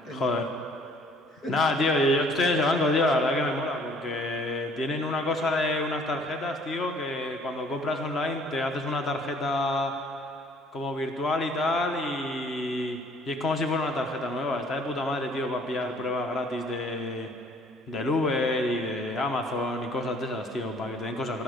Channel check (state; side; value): normal; both; correlation 0.57